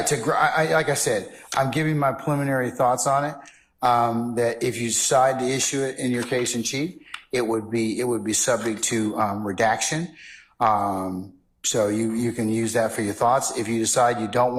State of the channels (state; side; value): identical; both; correlation 1.00